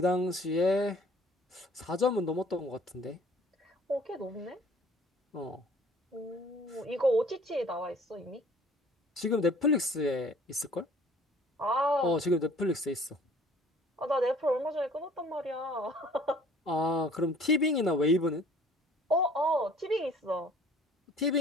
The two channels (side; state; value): both; normal; correlation 0.53